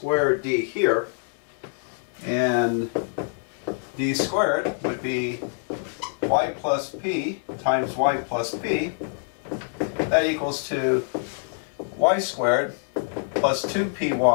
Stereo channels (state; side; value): silent; right; digital silence